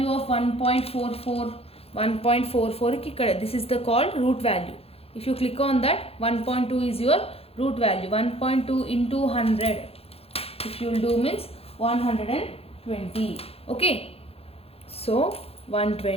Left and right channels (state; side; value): late; right; 0.29 ms